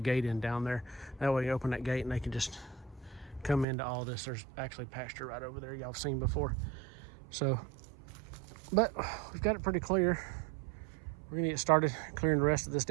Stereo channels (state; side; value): drops out; left; at 3.7 s